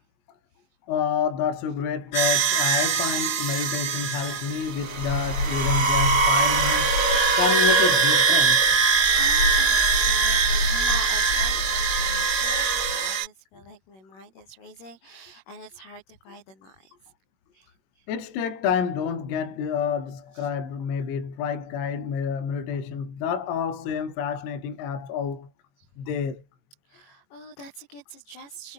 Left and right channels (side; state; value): right; late; 22 ms